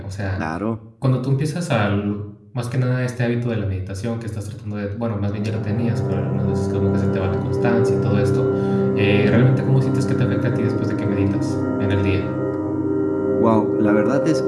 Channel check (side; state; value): both; identical; correlation 1.00